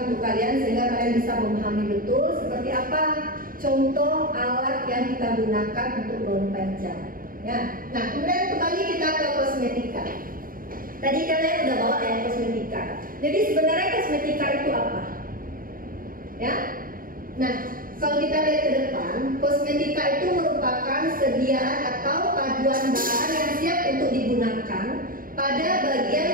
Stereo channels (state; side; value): late; left; 0.41 ms